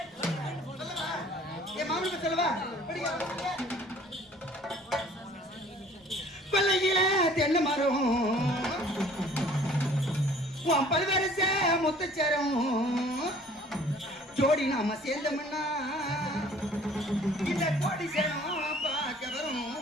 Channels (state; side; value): normal; both; correlation 0.53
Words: என் மாமனுக்கு சொல்லவா? கொல்லையில தென்னை மரம் உன் பல்வரச முத்துச்சரம் ஜோடி நாம சேர்ந்தோம்னா இந்த கோடி சரம் பார்க்க வரும்.